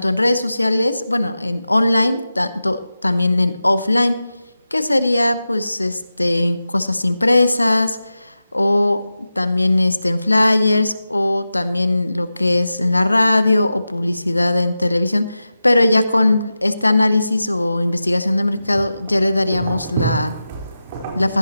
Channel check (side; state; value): both; inverted; correlation -0.93